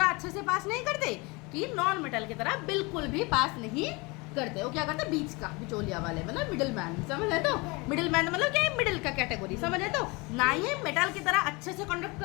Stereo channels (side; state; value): right; quieter; 26.3 dB